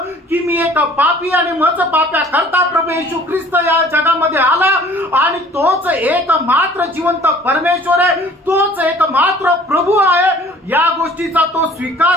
की मी एक पापी आणि माझं पाप्या करता प्रभू येशू ख्रिस्त या जगामध्ये आला आणि तोच एक मात्र जिवंत परमेश्वर आहे, तोच एक मात्र प्रभू आहे, या गोष्टीचा तो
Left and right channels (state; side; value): normal; both; correlation 0.51